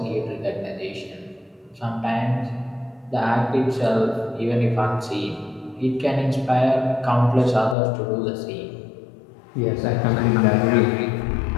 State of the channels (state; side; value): drops out; right; at 7.8 s